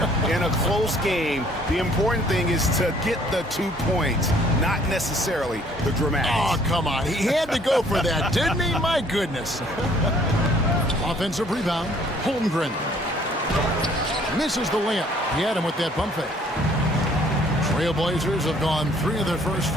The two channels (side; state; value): both; normal; correlation 0.60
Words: In a close game, the important thing is to get the 2 points, not necessarily the dramatics. Oh, come on. He had to go for that, didn't he? My goodness. Offensive rebound, Holmgren. Misses the layup. He had him with that pump fake. Trailblazers have gone 3 of their first